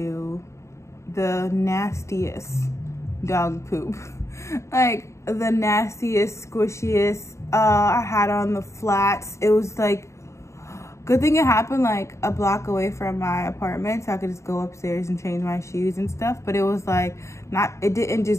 the nastiest dog poop. Like the nastiest, squishiest. I had on the flats. It was like, good thing it happened like a block away from my apartment, so I could just go upstairs and change my shoes and stuff. But it was like it didn't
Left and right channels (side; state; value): right; late; 0.14 ms